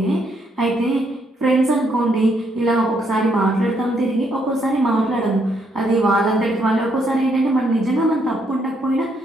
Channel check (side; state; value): both; normal; correlation 0.74